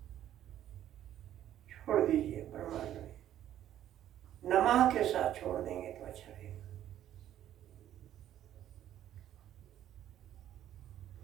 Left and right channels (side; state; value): left; quieter; 11.7 dB